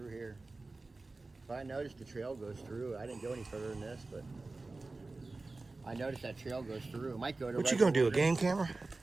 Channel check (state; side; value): quieter; left; 3.4 dB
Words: here. But I noticed the trail goes through. I didn't go any further than this, but I noticed that trail goes through. It might go to. What you gonna do, a game camera?